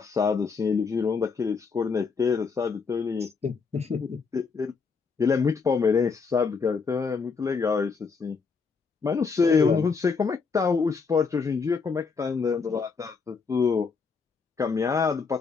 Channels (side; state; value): right; quieter; 5.1 dB